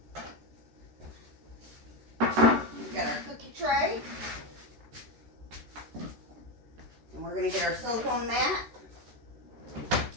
tray. And we're going to get our silicone mat.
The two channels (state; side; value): late; left; 13 ms